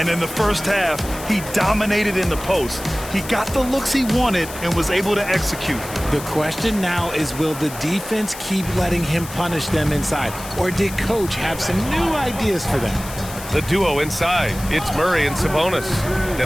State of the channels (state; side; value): noise; left; hiss, 13 dB below the sound